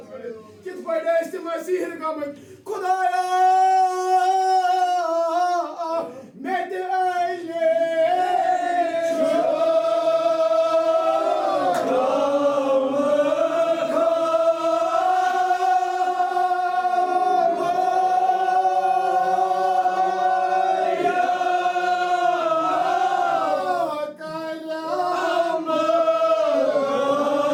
करित किस पड़े इस मसीह का खुदाया मैं ते आइले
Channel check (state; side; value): identical; both; correlation 1.00